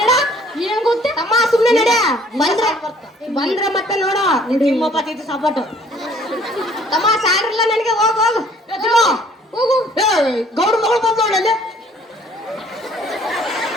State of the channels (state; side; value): normal; both; correlation 0.58